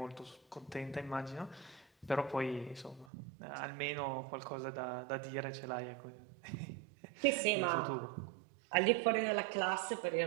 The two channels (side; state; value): left; drops out; at 3.1 s